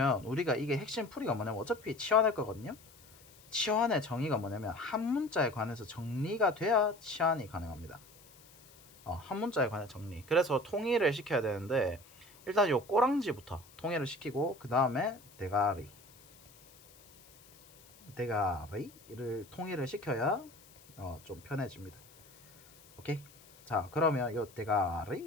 우리가 이게 핵심 풀이가 뭐냐면 어차피 치환할 거거든요. 치환의 정의가 뭐냐면 한 문자에 관해서 정리가 돼야 치환이 가능합니다. 한 문자에 관한 정리. 그래서 통일을 시켜야 되는데 일단 요 꼬랑지부터 통일을 시키고 그 다음에 대가리를 통일을 시켜야 좀 편해집니다. 오케이. 자, 그러면 요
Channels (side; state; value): left; noise; hiss, 25 dB below the sound